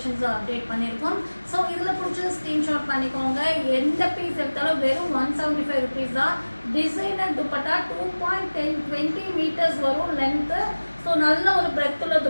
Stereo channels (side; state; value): both; inverted; correlation -1.00